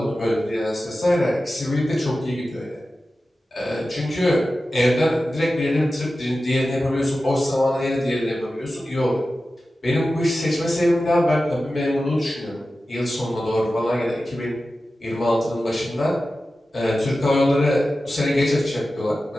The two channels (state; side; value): normal; both; correlation 0.94